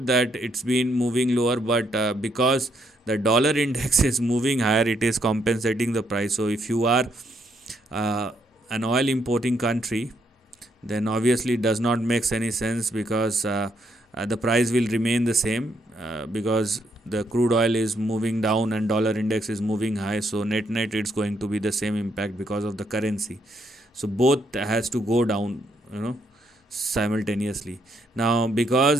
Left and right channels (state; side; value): normal; both; correlation 0.74